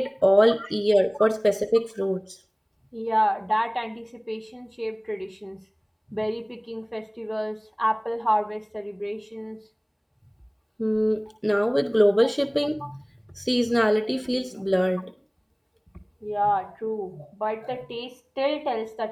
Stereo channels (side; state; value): both; identical; correlation 1.00